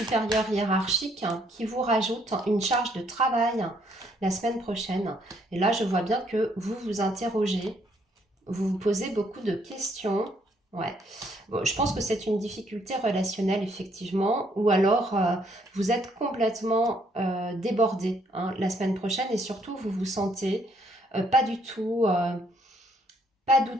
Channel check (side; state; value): both; normal; correlation 0.69